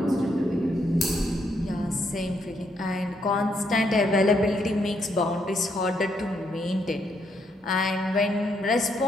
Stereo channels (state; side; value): normal; both; correlation 0.75